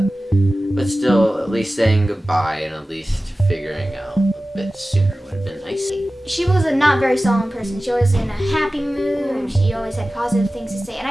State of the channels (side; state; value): both; normal; correlation 0.96